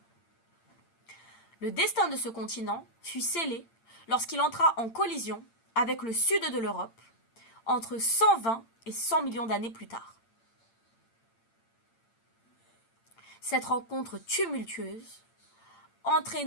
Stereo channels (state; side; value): late; right; 8.8 ms